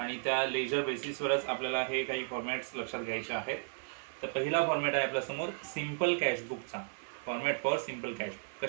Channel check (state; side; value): silent; left; digital silence